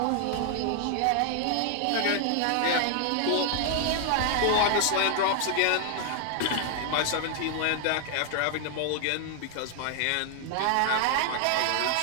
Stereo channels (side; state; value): both; different; correlation 0.00